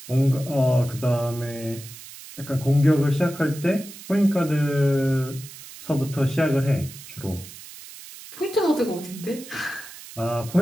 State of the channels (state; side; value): noise; right; hiss, 16 dB below the sound